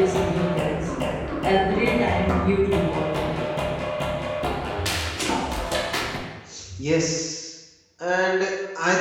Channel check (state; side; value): identical; both; correlation 1.00